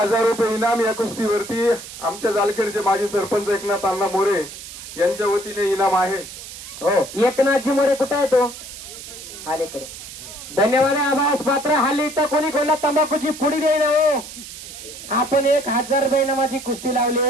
रुपये इनाम या कुस्तीवरती आमच्या जालखेडचे माजी सरपंच एकनाथ अण्णा मोरे यांच्या वतीने इनाम आहे. हो एकनाथजी मोरे कुठे आहे तो? अलीकडे. धन्यवाद आभास पात्र. हल्ली तर कोणी कोणला तंबाखूची पुडी देईना. हो आपण 1,000 रुपये इनामाची कुस्ती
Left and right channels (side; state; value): right; noise; hiss, 13 dB below the sound